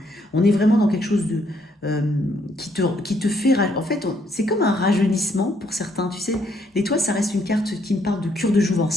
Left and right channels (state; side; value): normal; both; correlation 0.71